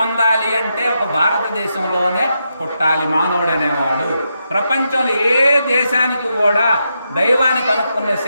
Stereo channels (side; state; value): both; inverted; correlation -0.84